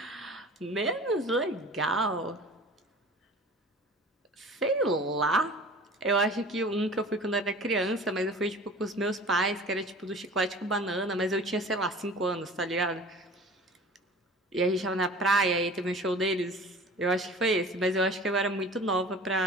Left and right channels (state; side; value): normal; both; correlation 0.42